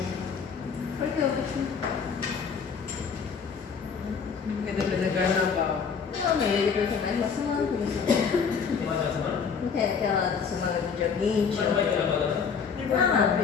Por que eu vou Porque depois é carnaval. Não, mas ele vai ter mais uma semana por isso. Tem mais uma semana? Não tem aquela semana do dia 20? Mas não vai ter agora, né? Não.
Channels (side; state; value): right; quieter; 6.2 dB